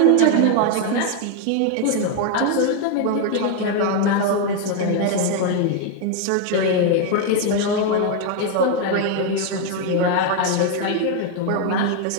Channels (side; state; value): both; different; correlation 0.01